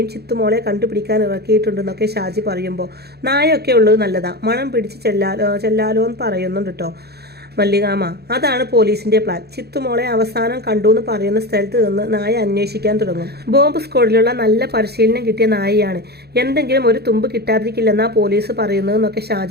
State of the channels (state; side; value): late; left; 0.47 ms